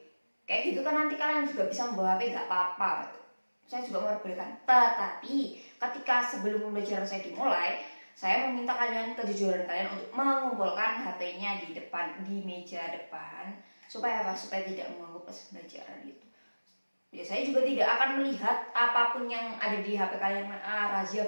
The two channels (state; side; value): inverted; both; correlation -1.00